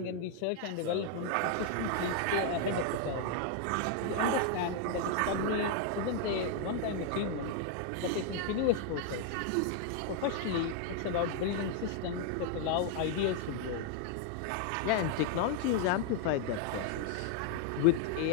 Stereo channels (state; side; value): different; both; correlation 0.00